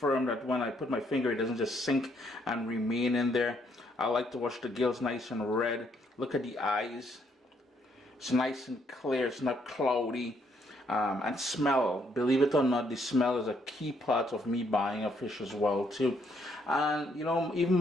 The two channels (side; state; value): both; normal; correlation 0.71